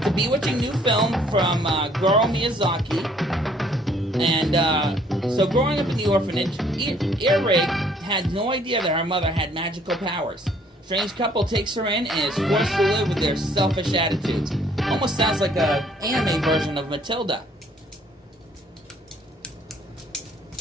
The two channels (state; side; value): normal; both; correlation 0.61